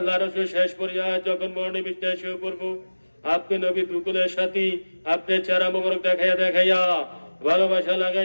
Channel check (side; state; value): both; inverted; correlation -1.00